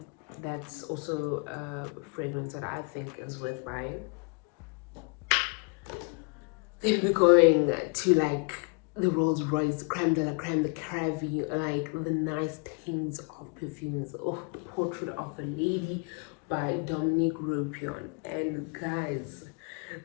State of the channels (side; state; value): right; quieter; 33.6 dB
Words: That's also a fragrance that I think is worth buying. Then we're going to like the Rolls Royce, creme de la creme, the Cravy, like the nice things of perfumes. Oh, the Portrait of a Lady by Dominique Ropion. And guys,